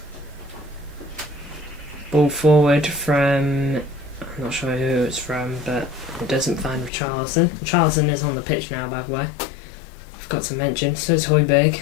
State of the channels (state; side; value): drops out; right; at 6.9 s